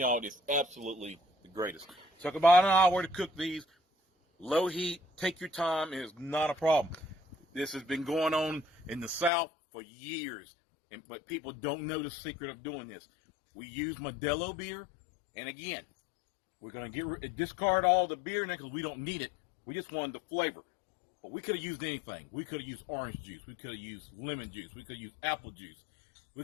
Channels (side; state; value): right; drops out; at 9.3 s